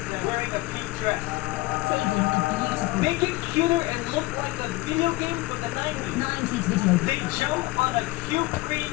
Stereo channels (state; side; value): quieter; right; 20.9 dB